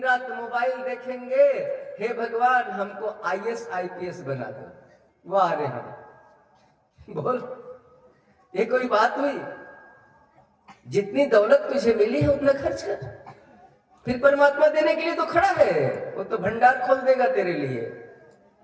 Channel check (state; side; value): identical; both; correlation 1.00